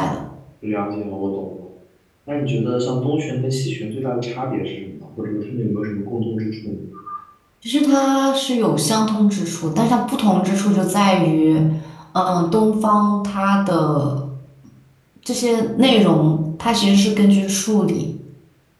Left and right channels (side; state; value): both; identical; correlation 1.00